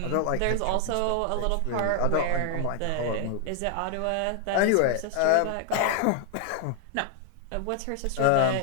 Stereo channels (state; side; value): different; both; correlation 0.00